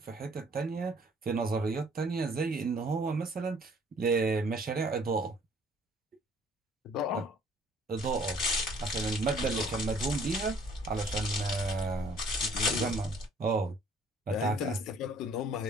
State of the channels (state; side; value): normal; both; correlation 0.58